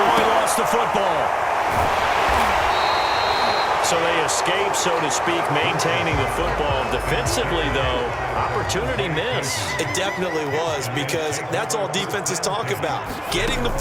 lost the football. So they escape, so to speak, maintaining the football. Defensively, though, opportunity miss. It definitely was, because that's all defenses talk about. Getting the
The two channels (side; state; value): both; identical; correlation 1.00